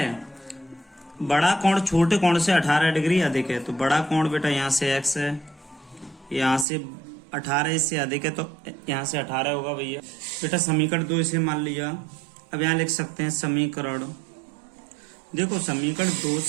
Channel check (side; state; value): left; drops out; at 6.7 s